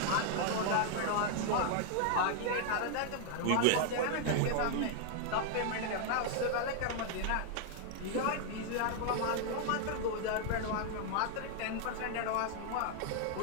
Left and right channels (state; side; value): different; both; correlation 0.00